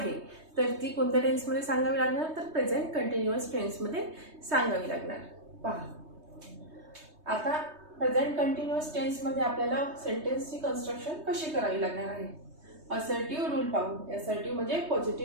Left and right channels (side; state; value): left; late; 3.2 ms